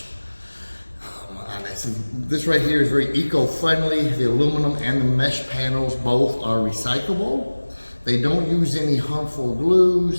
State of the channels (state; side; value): inverted; both; correlation -1.00